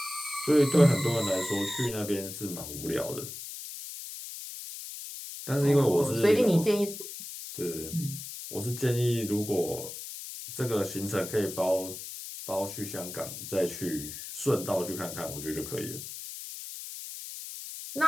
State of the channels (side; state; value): left; noise; hiss, 10 dB below the sound